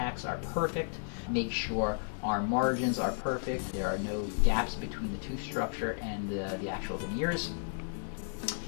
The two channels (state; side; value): silent; right; 56 dB below the other